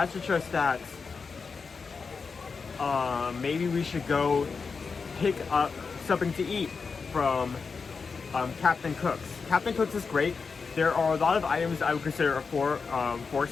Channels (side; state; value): right; quieter; 5.0 dB